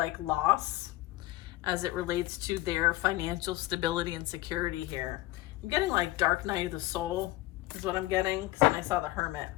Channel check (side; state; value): right; quieter; 17.7 dB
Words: loss as it relates to their financial stability and security here. I'm getting like Dark Night of the Soul is what I'm getting, because then I saw the Hermit.